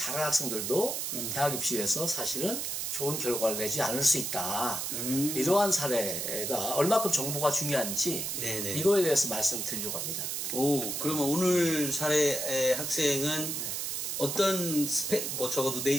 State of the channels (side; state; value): right; noise; hiss, 2 dB below the sound